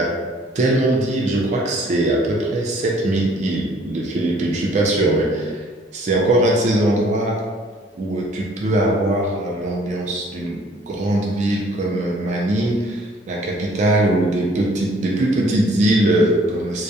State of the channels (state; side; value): normal; both; correlation 0.58